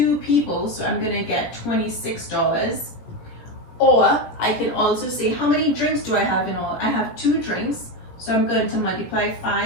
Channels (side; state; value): right; late; 17 ms